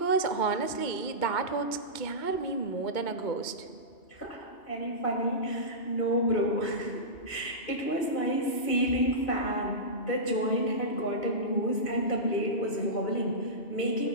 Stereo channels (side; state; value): right; late; 2.2 ms